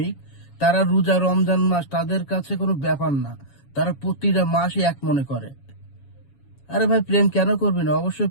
তারা রোজা রমজান মাস তাদের কাছে কোনো ব্যাপার না, তারা প্রতিটা মাসই এক মনে করে। আরে ভাই, প্রেম কেন করবি না? অবশ্যই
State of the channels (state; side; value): late; right; 7.2 ms